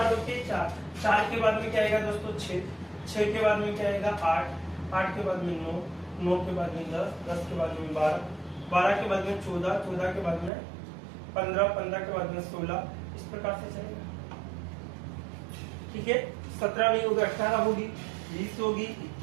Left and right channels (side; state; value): left; drops out; at 10.5 s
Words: होती है? 4। 4 के बाद में क्या आएगा दोस्तों? 6। 6 के बाद में क्या आएगा? 8। 8 के बाद में 9। 9 के बाद में 10। 10 के बाद में 12। 12 के बाद में 14। 14 के बाद में 15। 15 के बाद में 16। इस प्रकार से चलेगा, ठीक है। 17 नहीं होगी, 18 होगी, 20 होगी,